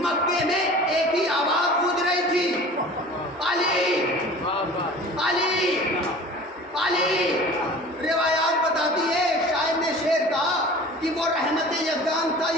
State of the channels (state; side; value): normal; both; correlation 0.42